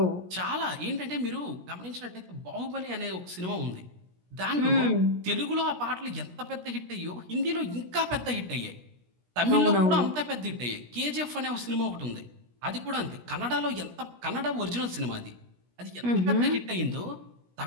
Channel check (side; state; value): left; late; 17 ms